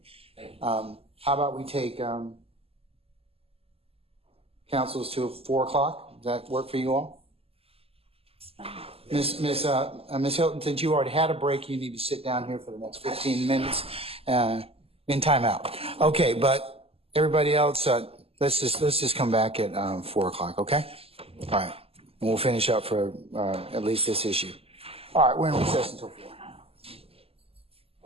How about we take councils to 4 o'clock? Does that work for you all? Miss Hilton, since you already had a break, you need to sit down here for the next 15 minutes in timeout. Okay, but everybody else, let's just come back at 4 o'clock, okay? All right, and we'll finish up for at least this issue. All right, we're in recess until 4.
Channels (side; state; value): left; late; 0.28 ms